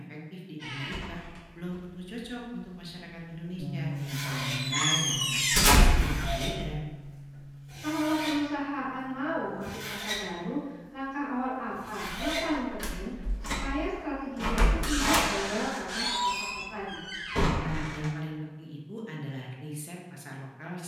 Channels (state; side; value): identical; both; correlation 1.00